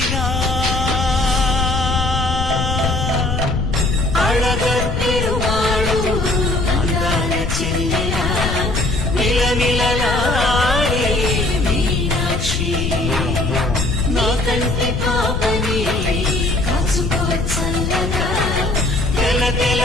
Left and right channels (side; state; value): left; noise; rumble, 2 dB below the sound